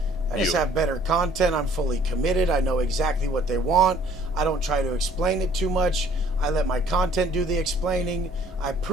I just have better content. I'm fully committed. I know exactly what they want. I don't try to explain it too much. I let my content do the explaining. I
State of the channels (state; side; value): normal; both; correlation 0.57